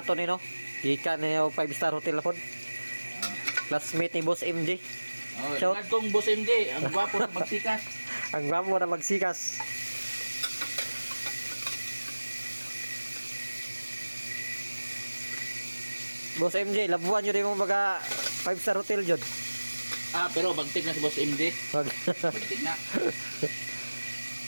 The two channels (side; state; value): both; inverted; correlation -1.00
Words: to ni no. Gikan na yung 5-star hotel na po. Classmate ni Boss MJ. Oh, Shout. shout kong Boss MJ, ang gwapo na magsikas. Ang gwapo na magsikas. Boss MJ, labuan nyo rin mong mga 5-star hotel dyan. Ah, pero bagtik na si Boss MJ. Wag. Bagtik na.